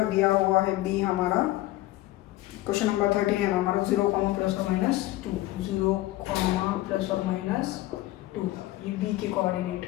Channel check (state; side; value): quieter; right; 17.0 dB